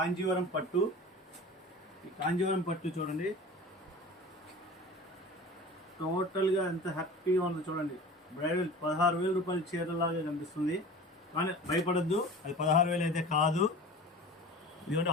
పట్టు. ఈ కాంజీవరం పట్టు చూడండి, టోటల్గా ఎంత హ్యాపీగా ఉందో చూడండి. బ్రైడల్ 16,000 రూపాయల చీరలాగా కనిపిస్తుంది, కానీ భయపడద్దు, అది 16,000 అయితే కాదు. ఇదిగోండి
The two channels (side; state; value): both; normal; correlation 0.37